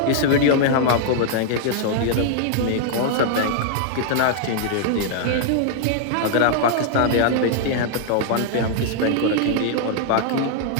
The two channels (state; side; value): different; both; correlation -0.01